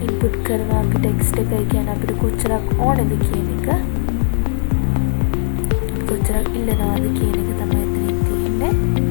input කරනවා අපි text එක. ඒ කියන්නේ අපිට කොච්චරක් ඕනේද කියන එක, කොච්චරක් ඉල්ලනවාද කියන එක තමයි එතනින් තියෙන්නේ.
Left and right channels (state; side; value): silent; right; digital silence